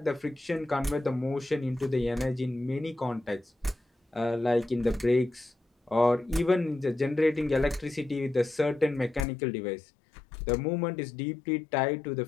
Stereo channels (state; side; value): drops out; right; at 9.2 s